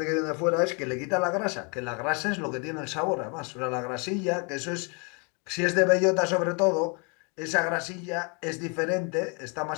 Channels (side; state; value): right; quieter; 33.7 dB